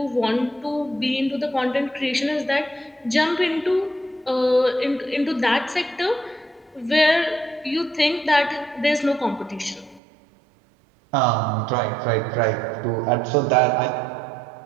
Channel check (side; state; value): left; drops out; at 10.0 s